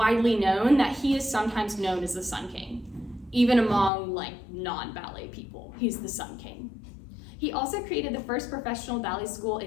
known that he is sometimes known as the Sun King. Even among non-ballet people, he's the Sun King. He also created the first professional ballet school in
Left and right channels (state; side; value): drops out; right; at 3.9 s